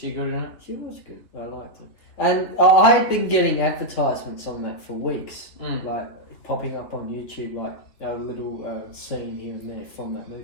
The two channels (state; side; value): late; right; 3.5 ms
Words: good in it? She was good. I liked her. And I had been getting advertisements on that for weeks, like popping up on YouTube, like a little scene here and there from that